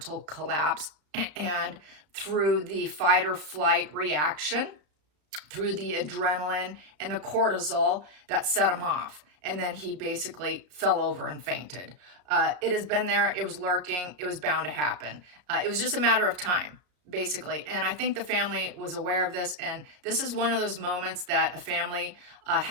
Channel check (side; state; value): left; late; 33 ms